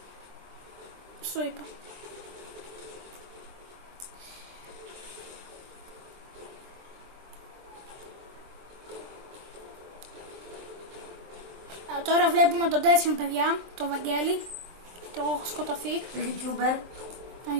Στο είπα. Τώρα βλέπουμε τον τέτοιο παιδιά, τον Βαγγέλη. Και εγώ έχω σκοτωθεί. Το YouTuber. Τον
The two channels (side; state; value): left; late; 24 ms